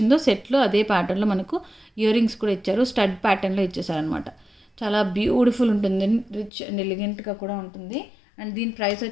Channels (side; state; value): right; drops out; at 6.5 s